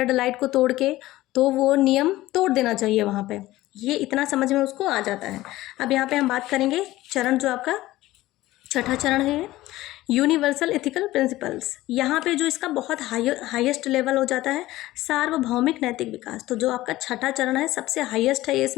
लाइट को तोड़ के, तो वो नियम तोड़ देना चाहिए वहाँ पे। ये इतना समझ में उसको आ जाता है। अब यहाँ पे हम बात करेंगे चरण जो आपका 6ठा चरण है, यूनिवर्सल एथिकल प्रिंसिपल्स, यहाँ पे जो इसका बहुत हाईएस्ट लेवल हो जाता है सार्वभौमिक नैतिक विकास। तो जो आपका छठा चरण है सबसे हाईएस्ट है ये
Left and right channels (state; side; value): quieter; right; 16.9 dB